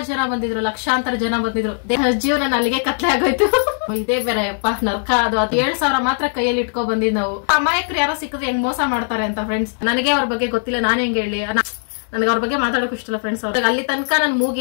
ಜನ ಬಂದಿದ್ರು, ಲಕ್ಷಾಂತರ ಜನ ಬಂದಿದ್ರು. ಜೀವನ ಅಲ್ಲಿಗೆ ಕತ್ಲೆ ಆಗೋಯ್ತು. ಇದೇ ಬೇರೆ ಅಪ್ಪ ನರ್ಕ. ಅದು 7,000 ಮಾತ್ರ ಕೈಯಲ್ಲಿ ಇಟ್ಕೊ ಬಂದಿದ್ ನಾವು. ಅಮಾಯಕರು ಯಾರೋ ಸಿಕ್ಕಿದ್ರೆ ಹೆಂಗ್ ಮೋಸ ಮಾಡ್ತಾರೆ ಅಂತ ಫ್ರೆಂಡ್ಸ್. ನನಗೆ ಅವ್ರ ಬಗ್ಗೆ ಗೊತ್ತಿಲ್ಲ, ನಾನ್ ಹೆಂಗ್ ಹೇಳಿ. ನನಗೆ ಅವ್ರ ಬಗ್ಗೆ ಮಾತಾಡೋಕ್ ಇಷ್ಟಲ್ಲ ಫ್ರೆಂಡ್ಸ್. ಅವ್ರಿಗೆ ಅಲ್ಲಿ ತನಕ ನನ್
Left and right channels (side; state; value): right; silent; 66 dB below the other